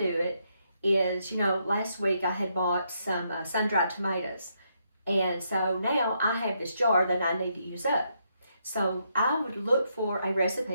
it is, last week I had bought some sun-dried tomatoes. And so now I have this jar that I need to use up. So I would look for a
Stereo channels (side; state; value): both; inverted; correlation -0.78